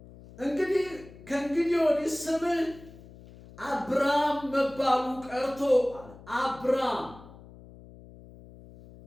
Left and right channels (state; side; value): noise; left; hum, 20 dB below the sound